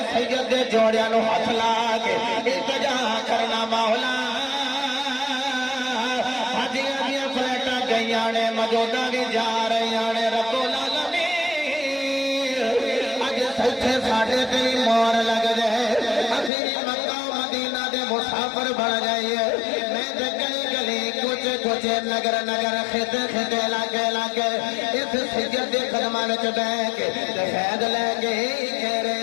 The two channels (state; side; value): drops out; right; at 16.5 s